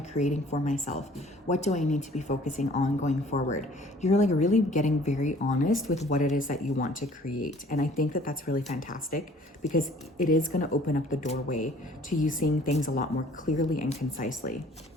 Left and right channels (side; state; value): both; normal; correlation 0.54